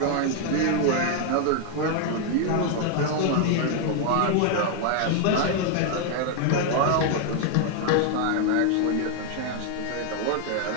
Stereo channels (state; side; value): different; both; correlation 0.00